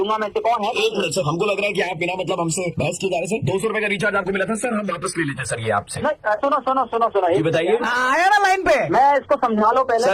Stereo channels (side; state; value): both; identical; correlation 1.00